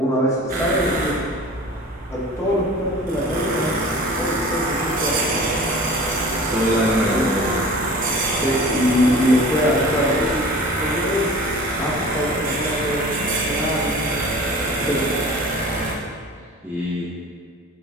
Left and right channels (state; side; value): normal; both; correlation 0.41